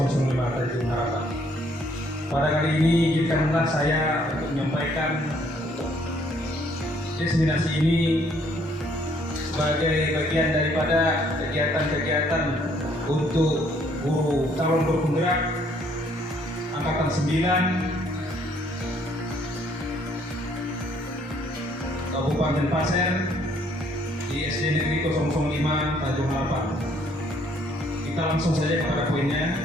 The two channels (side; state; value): both; normal; correlation 0.65